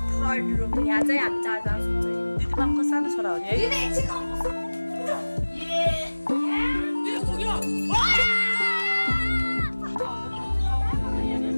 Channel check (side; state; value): both; inverted; correlation -1.00